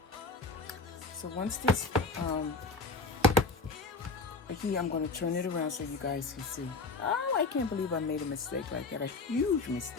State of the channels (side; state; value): right; quieter; 3.8 dB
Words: So once this here, I'm going to turn it around so you guys can see. Oh, I can't believe I made a mistake like that. A huge